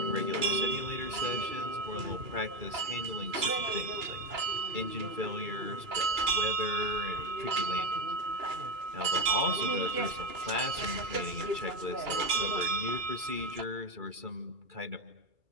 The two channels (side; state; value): left; late; 2.3 ms